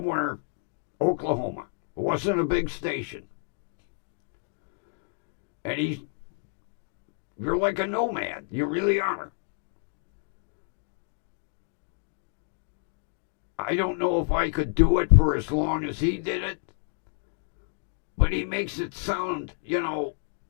Oklahoma. It wasn't a big station. And you're like a nomad. You really are. I don't know if I could do it for as long as he did it, but he makes it sound, you know,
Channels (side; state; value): right; silent; 58 dB below the other